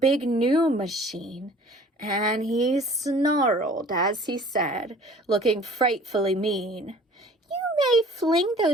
new machine, and he snarled as he said, looking frightfully mean, "You may fling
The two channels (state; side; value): normal; both; correlation 0.50